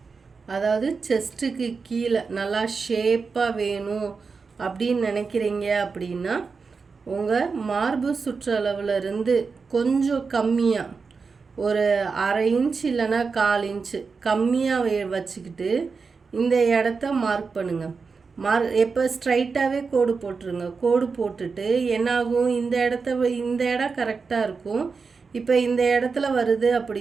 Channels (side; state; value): left; quieter; 4.9 dB